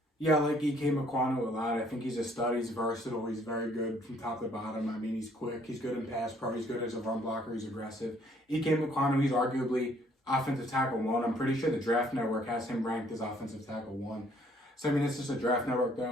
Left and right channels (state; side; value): normal; both; correlation 0.63